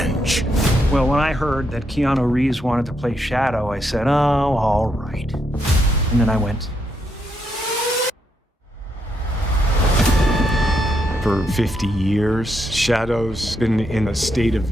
Well, when I heard that Keanu Reeves wanted to play Shadow, I said, oh, all right. And then I went. For 50 years, Shadow's been in a state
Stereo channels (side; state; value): both; normal; correlation 0.79